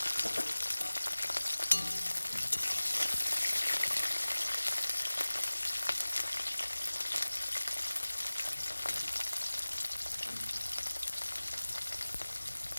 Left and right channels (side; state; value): both; inverted; correlation -1.00